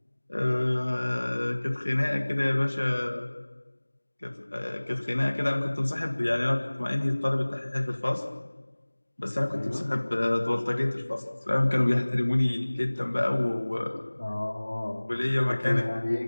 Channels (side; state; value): both; inverted; correlation -1.00